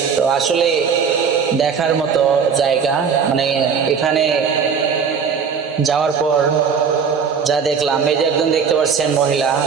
তো আসলে দেখার মতো জায়গা, মানে এখানে যাওয়ার পর যা দেখলাম, এই যে একজন দেখতে পাচ্ছেন মহিলা,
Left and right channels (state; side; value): quieter; left; 6.3 dB